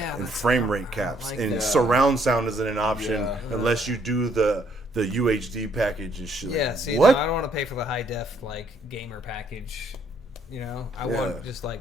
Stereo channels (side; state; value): both; normal; correlation 0.68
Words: And frame rate caps. Like and surround sound isn't an option unless you do the UHD package and shit. Yeah, like, see, what? No, I don't want to pay for the high def, like, gamer package. I want just, like,